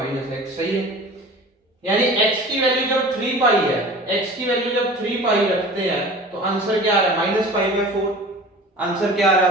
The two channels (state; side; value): normal; both; correlation 0.40